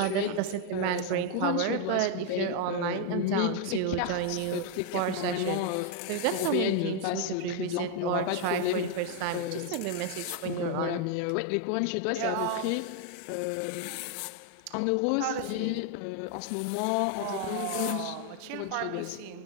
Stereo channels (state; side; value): different; both; correlation 0.01